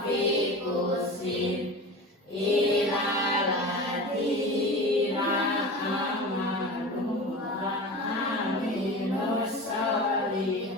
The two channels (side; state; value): both; normal; correlation 0.32